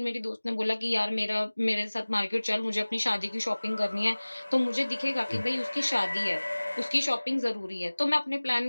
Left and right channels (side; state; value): both; inverted; correlation -1.00